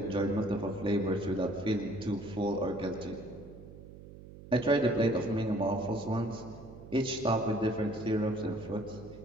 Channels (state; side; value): noise; right; hum, 16 dB below the sound